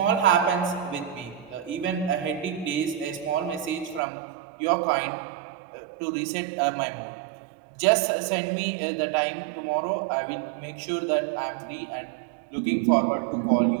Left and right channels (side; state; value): left; drops out; at 4.0 s